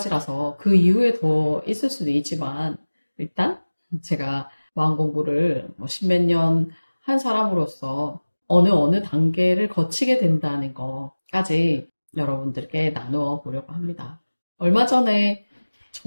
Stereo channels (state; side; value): inverted; both; correlation -1.00